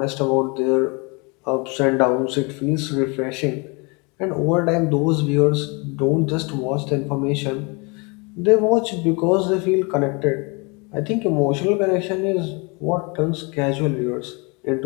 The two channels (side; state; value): right; quieter; 30.0 dB